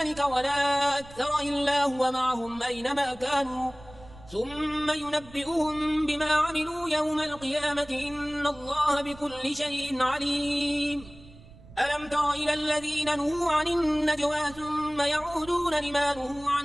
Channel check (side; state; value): right; noise; rumble, 20 dB below the sound